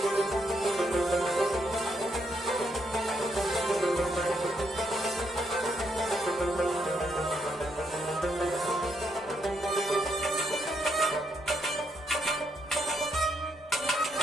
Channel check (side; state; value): both; normal; correlation 0.77